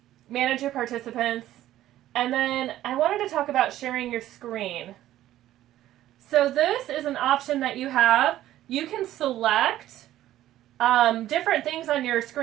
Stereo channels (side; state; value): left; quieter; 13.6 dB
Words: manage your participants. And then I wanted to talk about sharing your screen. So this is an option that you have. You can select different things on your